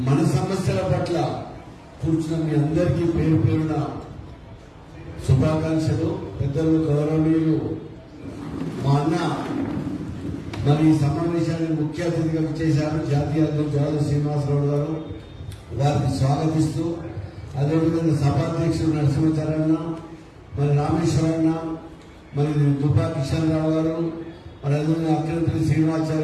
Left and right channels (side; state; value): both; identical; correlation 1.00